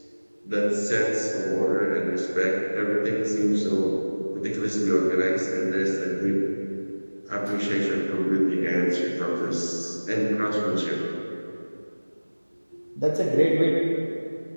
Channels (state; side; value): inverted; both; correlation -1.00